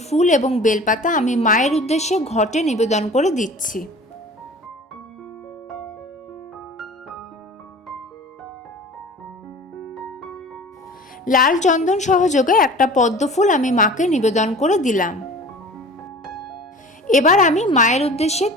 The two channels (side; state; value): both; normal; correlation 0.41